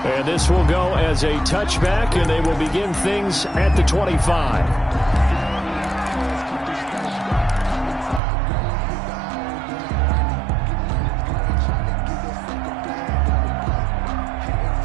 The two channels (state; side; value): drops out; left; at 8.2 s